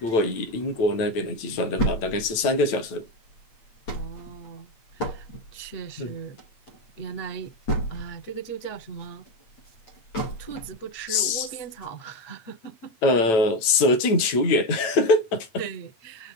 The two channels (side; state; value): right; late; 9.0 ms